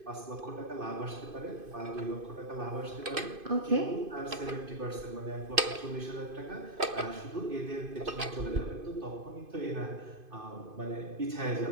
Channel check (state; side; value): late; left; 2.5 ms